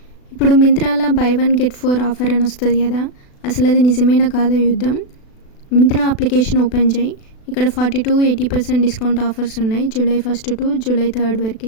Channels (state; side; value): late; right; 36 ms